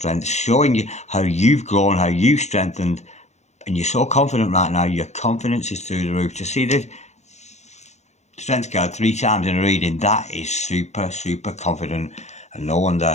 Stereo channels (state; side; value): late; right; 0.33 ms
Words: showing you how you've grown, how you've strengthened. And you're so confident right now, your confidence is through the roof. To see the Strength card 3 times in a reading, that is super confident. And no